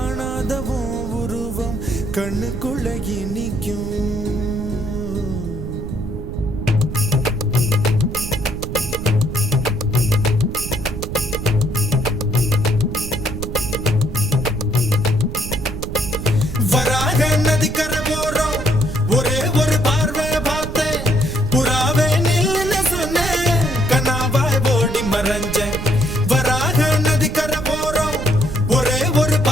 உருவம் கண்ணுக்குள்ள நிற்கும். வராக நதிக்கரை போறோம் ஒரே ஒரு பார்வை பார்த்தேன் புறாவே நில்லுன்னு சொன்னேன் கண்ணாவாய் ஓடி மறைஞ்சேன். வராக நதிக்கரை போறோம் ஒரே ஒரு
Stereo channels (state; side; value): noise; right; rumble, 7 dB below the sound